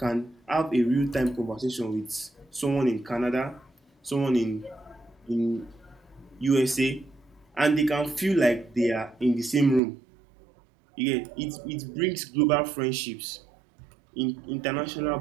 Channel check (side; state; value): left; drops out; at 9.8 s